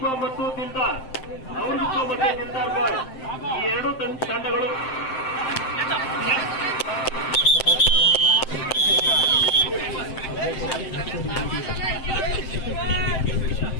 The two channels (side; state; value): right; late; 7.7 ms